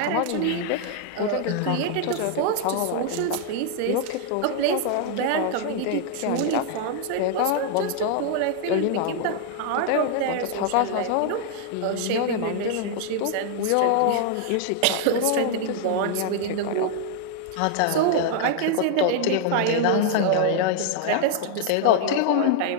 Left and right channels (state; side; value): different; both; correlation 0.00